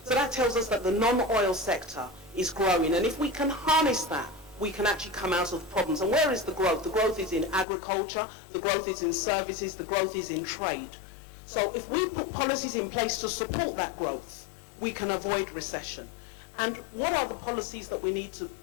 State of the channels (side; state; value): right; drops out; at 7.7 s